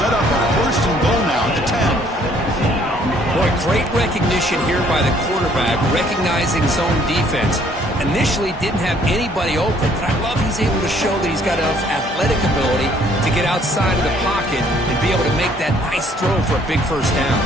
up a first and goal now at the 10. Boy, great recognition here by the quarterback, recognizing zone defense. Initially didn't have anybody open, but I love he's able to show that he's got enough athletic ability to get outside of the pocket and be able to make that nice throw for a big first down.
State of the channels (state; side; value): normal; both; correlation 0.62